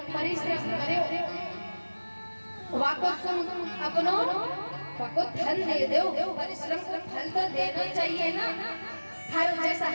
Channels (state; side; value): inverted; both; correlation -1.00